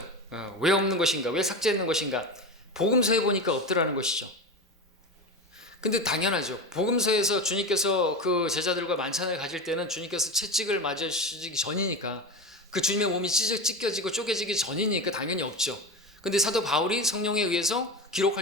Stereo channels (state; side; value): normal; both; correlation 0.23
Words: 왜 없는 것인가? 왜 삭제했는 것인가? 복음서에 보니까 없더라는 것이죠. 근데 당연하죠. 복음서에서 주님께서 그 제자들과 만찬을 가질 때는 주님께서 채찍을 맞으시기 전이니까 그 주님의 몸이 찢겨지고 쪼개지기 전이니까 당연히 없죠. 근데 사도 바울이 성령에 의해서